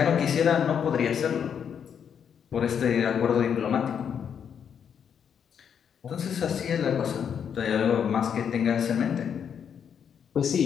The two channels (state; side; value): quieter; right; 7.8 dB